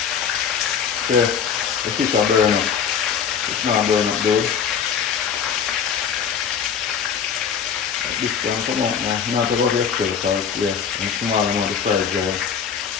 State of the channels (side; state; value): right; quieter; 7.3 dB